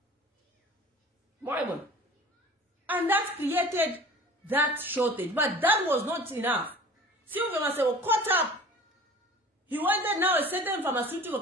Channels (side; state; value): both; normal; correlation 0.43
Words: And that created that shortage. But that was not enough. Sylvia Masebo caught up. He wanted now a certain pharmaceutical